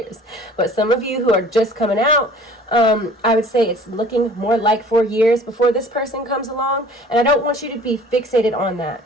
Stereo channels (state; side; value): normal; both; correlation 0.49